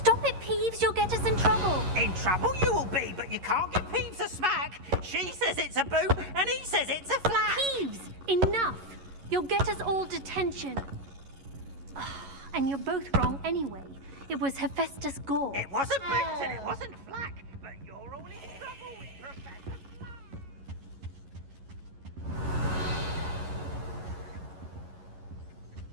it, Peeves. You'll get us in trouble. In trouble you will be, but you can't give Peeves a smack. She says it's a boot, and he says it's a flat. Peeves, enough. You'll get us all detention. And you're both wrong anyway. It was Hephaestus Gore. It wasn't boot and it wasn't flack, but you're all in trouble with Professor.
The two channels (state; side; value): late; left; 11 ms